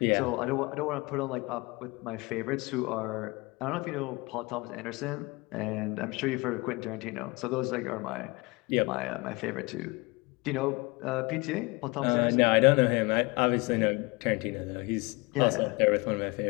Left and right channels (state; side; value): quieter; right; 25.5 dB